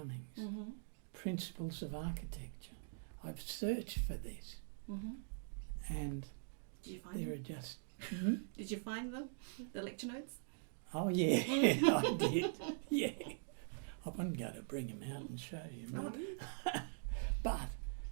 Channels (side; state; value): left; silent; digital silence